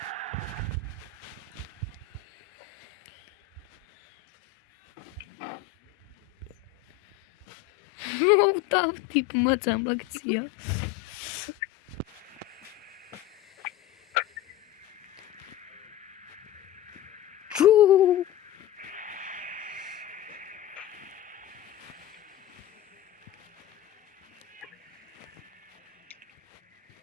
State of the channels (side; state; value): right; quieter; 11.9 dB